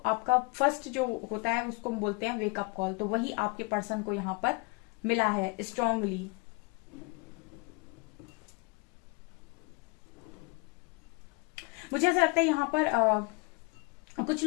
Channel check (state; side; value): quieter; right; 28.3 dB